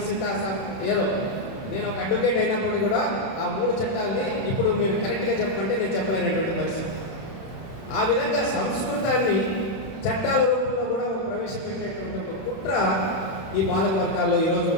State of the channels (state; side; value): late; right; 31 ms